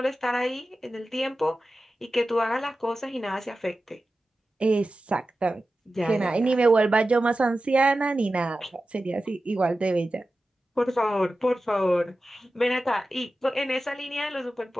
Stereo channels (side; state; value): both; normal; correlation 0.94